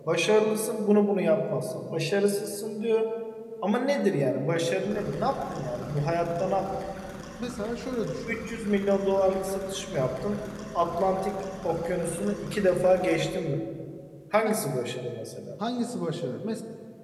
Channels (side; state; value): both; identical; correlation 1.00